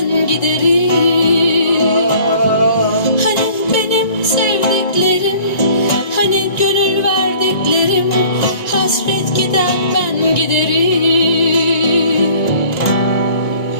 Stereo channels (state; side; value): late; right; 1.9 ms